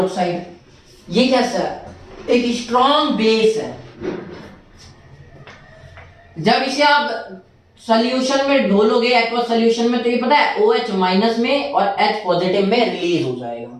ये कैसा है, एक स्ट्रॉन्ग बेस है। जब इसे आप सॉल्यूशन में ढोलोगे, एक्वस सॉल्यूशन में, तो ये पता है OH- में और H+ में रिलीज हो जाएगा।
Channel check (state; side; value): identical; both; correlation 1.00